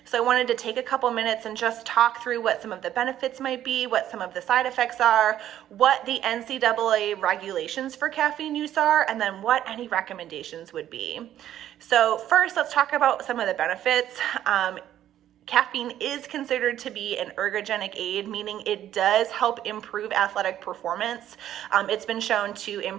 So I wanted to take a couple minutes and just talk through what some of the benefits might be, what some of the side effects are, what the NCAA regulations for caffeine use are, and then what any recommendations would be. So first, let's talk about some of the benefits. Caffeine is considered to be an ergogenic aid, meaning it does help improve athletic performance. It's been shown to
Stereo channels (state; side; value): quieter; left; 11.6 dB